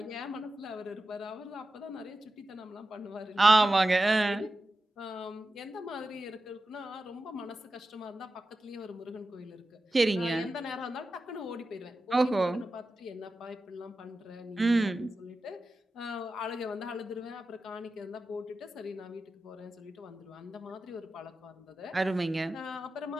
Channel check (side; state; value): both; normal; correlation 0.92